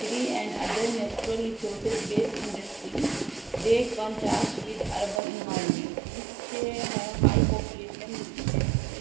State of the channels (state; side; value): drops out; left; at 5.2 s